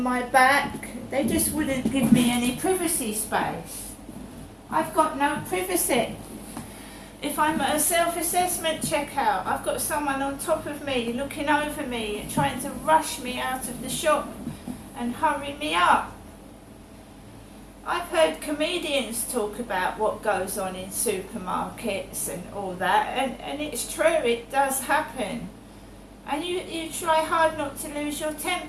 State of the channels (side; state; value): both; identical; correlation 1.00